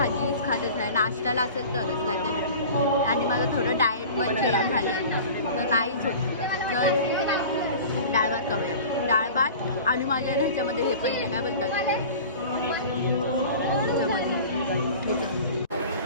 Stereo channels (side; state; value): both; inverted; correlation -0.39